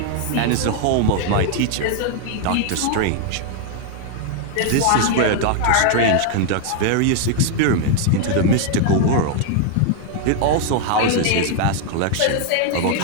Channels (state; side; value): different; both; correlation 0.00